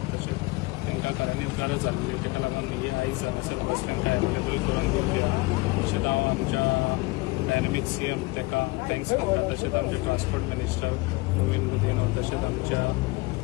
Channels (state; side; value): quieter; right; 23.6 dB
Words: तशेंच तांकां खऱ्यांनीच गरज आसलेली. ताका लागून ही आयज हांगासर बस तांकां एवेलेबल करून दिल्ली आसा. तशेंच हांव आमच्या डायनॅमिक सीएम ताका थँक्स करता, तशेंच आमचे ट्रान्सपोर्ट मिनिस्टर नवीन मोदीन, तशेंच आमच्या